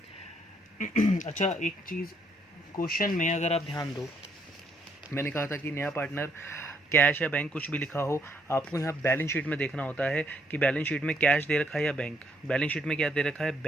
अच्छा एक चीज़, क्वेश्चन में अगर आप ध्यान दो, मैंने कहा था कि नया पार्टनर कैश या बैंक कुछ भी लिखा हो, आपको यहाँ बैलेंस शीट में देखना होता है कि बैलेंस शीट में कैश दे रखा है या बैंक। बैलेंस शीट में क्या दे रखा है,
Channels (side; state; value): both; normal; correlation 0.72